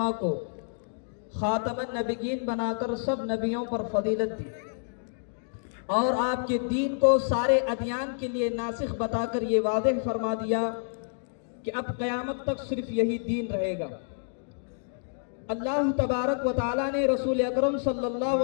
کو خاتم النبیین بنا کر سب نبیوں پر فضیلت دی، اور آپ کے دین کو سارے ادیان کے لیے ناسخ بتا کر یہ واضح فرما دیا کہ اب قیامت تک صرف یہی دین رہے گا۔ اللہ تبارک و تعالی نے رسول اکرم صلی اللہ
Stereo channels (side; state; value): right; silent; digital silence